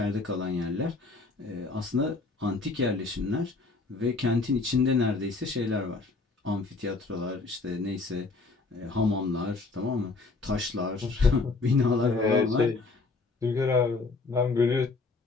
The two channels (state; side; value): quieter; right; 3.9 dB